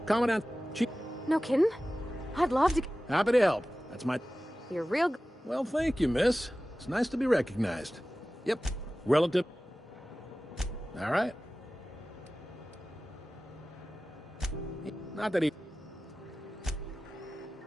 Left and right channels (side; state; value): both; normal; correlation 0.96